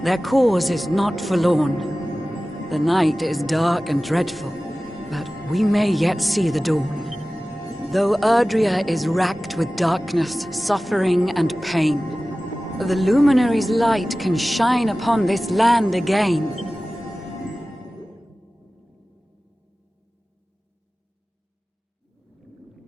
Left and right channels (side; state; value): both; normal; correlation 0.96